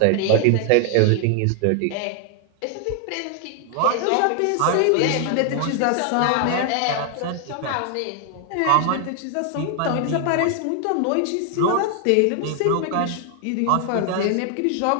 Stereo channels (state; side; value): different; both; correlation 0.00